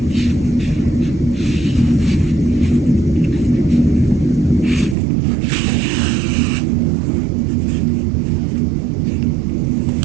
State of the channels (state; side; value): drops out; left; at 5.0 s